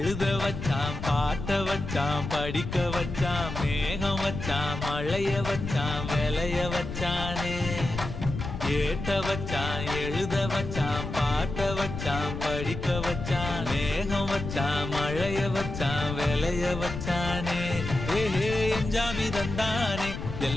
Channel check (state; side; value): noise; left; rumble, 6 dB below the sound